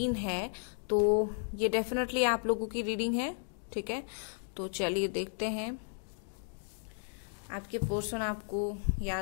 है तो ये डेफिनेटली आप लोगों की रीडिंग है। ठीक है, तो चलिए देखते हैं आपके पर्सन आपको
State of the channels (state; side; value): silent; right; digital silence